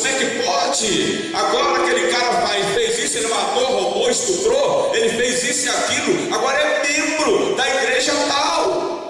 é que pode? Agora aquele cara fez isso, ele matou, roubou, estuprou, ele fez isso e aquilo, agora é membro da igreja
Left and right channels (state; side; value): identical; both; correlation 1.00